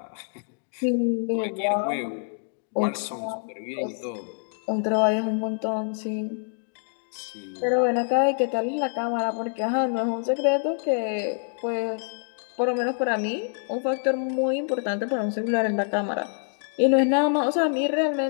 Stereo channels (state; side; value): silent; right; 61 dB below the other